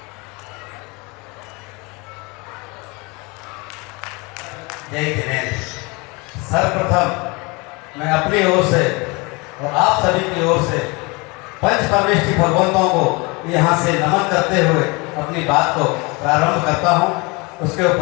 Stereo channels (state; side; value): quieter; right; 27.3 dB